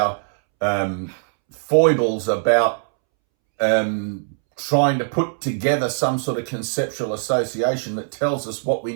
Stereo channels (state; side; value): silent; left; 65 dB below the other